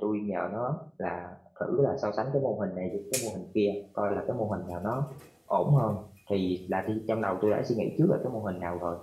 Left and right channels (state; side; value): identical; both; correlation 1.00